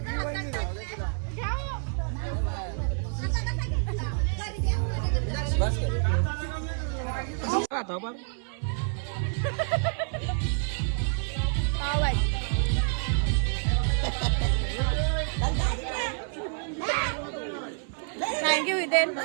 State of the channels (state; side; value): silent; left; 55 dB below the other